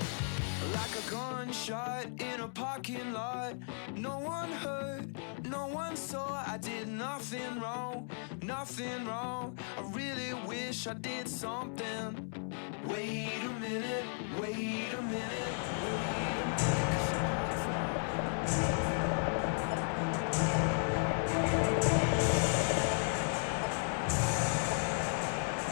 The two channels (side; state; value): right; silent; 54 dB below the other